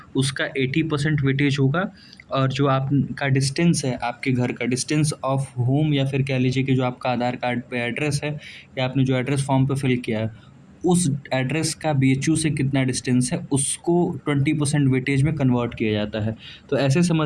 उसका 80% वेटेज होगा। और जो आपका डिस्टेंस है, आपके घर का डिस्टेंस ऑफ होम, या फिर कह लीजिए कि जो आपका आधार कार्ड पे एड्रेस है या आपने जो एड्रेस फॉर्म पे फिल किया है, उस एड्रेस का बीएचयू से कितना डिस्टेंस है, उसको 20% वेटेज में कन्वर्ट किया जाता है। तो ऐसे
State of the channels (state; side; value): identical; both; correlation 1.00